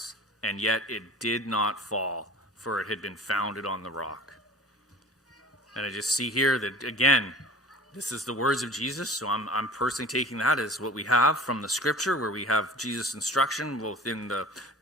and yet it did not fall, for it had been founded on the rock. And I just see here that, again, this is the words of Jesus, so I'm personally taking that as what we have from the Scripture, where we have Jesus' instruction both in the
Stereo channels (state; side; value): normal; both; correlation 0.40